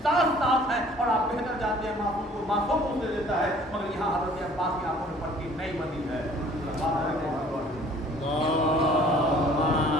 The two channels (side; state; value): both; normal; correlation 0.53